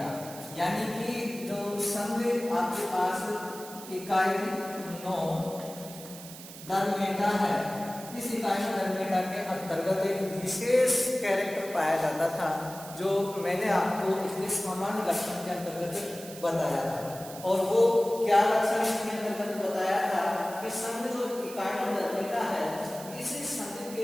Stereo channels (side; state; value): right; noise; hiss, 14 dB below the sound